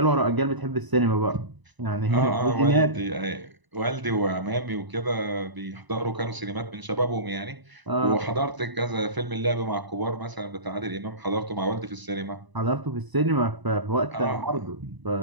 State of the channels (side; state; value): left; late; 1.0 ms